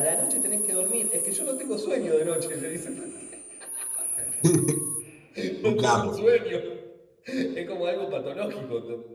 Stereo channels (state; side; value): identical; both; correlation 1.00